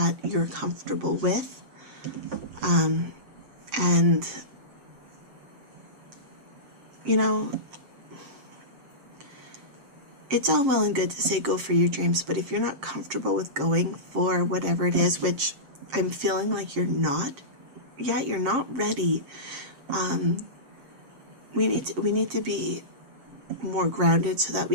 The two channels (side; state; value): left; late; 7.5 ms